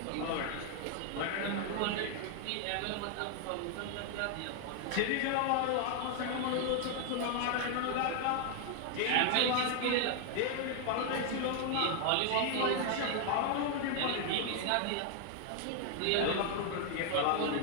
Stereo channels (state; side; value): different; both; correlation 0.00